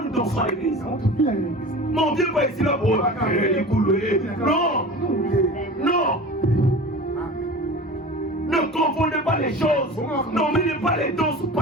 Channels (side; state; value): both; normal; correlation 0.36